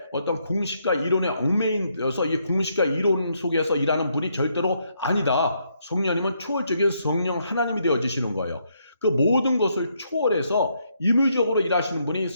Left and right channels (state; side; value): inverted; both; correlation -0.75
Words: 어떤 공식과 이론에 얽매여서 이 공식과 이론 속에서 일하는 분이 절대로 아니다. 성령님은 초월적인 성령 하나님이 되어지시는 거예요. 그 모든 것을 초월해서 임의적으로 일하시는 분이